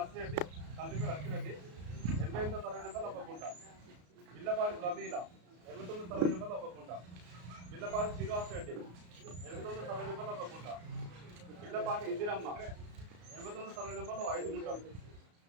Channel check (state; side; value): late; left; 34 ms